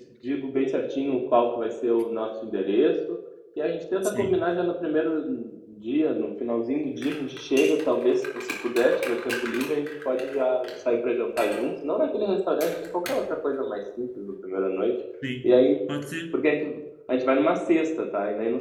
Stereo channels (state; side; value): identical; both; correlation 1.00